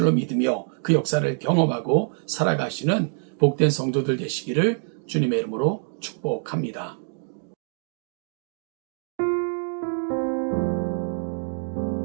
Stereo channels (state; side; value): silent; left; 59 dB below the other